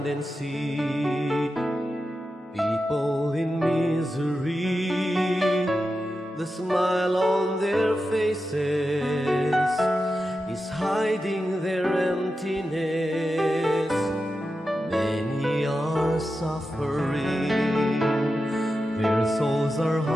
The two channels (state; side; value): normal; both; correlation 0.91